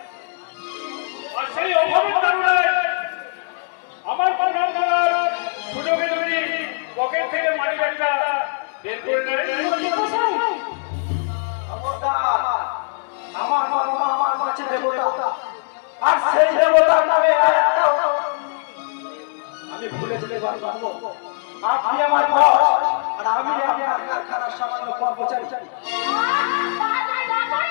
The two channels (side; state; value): right; silent; digital silence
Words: আর সেই অভাবের কারণে আমার প্রণাম করার সুযোগে যদি পকেট থেকে মানি ব্যাগটা বের করে নেয়। আমার বাবা আমার কাছে দেবতা, আর সেই দেবতার নামে আমি ভুলে যেতে পারবো। আপনি আমার বস, আর আমি আপনার কারখানার সামান্য কর্মচারী।